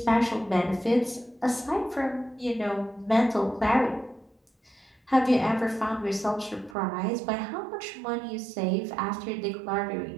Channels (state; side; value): drops out; left; at 6.8 s